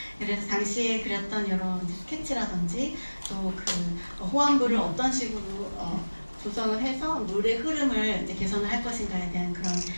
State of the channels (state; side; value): inverted; both; correlation -1.00